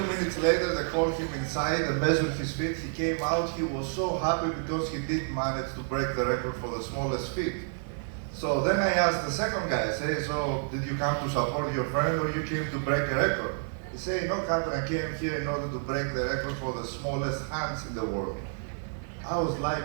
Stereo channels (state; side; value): silent; left; digital silence